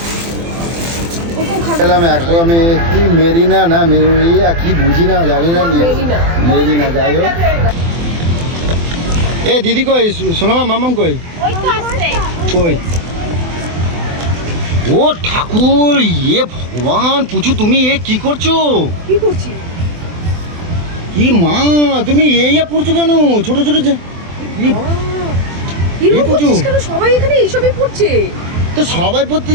ওকেও খাবিয়ে খেলাম এখন আমি, কি মেরিনা না মেরিয়া কি বুঝি না, জানি না। মেরিনা। মেরিনা, যাই হোক। এ দিদি কই? সোনামা, মামাম কই? ওই তো আসছে। কই? ও ঠাকুর, ইয়ে ভগবান, পুচু তুমি এ কি করছো? কি করছি? কি মা, তুমি এই পড়ছো কেন? ছোট ছোট এরকম পুচু। করছিস কেন? সবাই এখানে এইসবই পড়ছে। তো সবাই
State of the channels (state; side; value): late; left; 24 ms